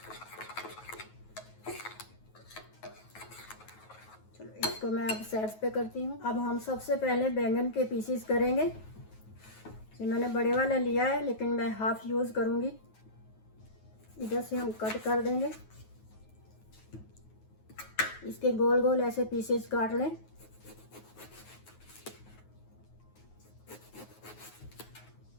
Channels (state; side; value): late; right; 9.3 ms